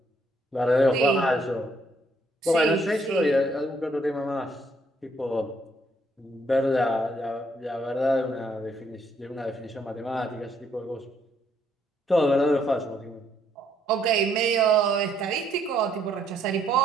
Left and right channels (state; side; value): normal; both; correlation 0.70